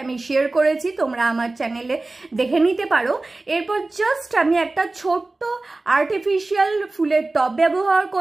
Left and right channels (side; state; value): left; quieter; 3.2 dB